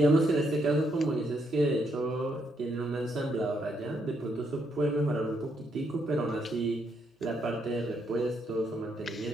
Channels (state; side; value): normal; both; correlation 0.76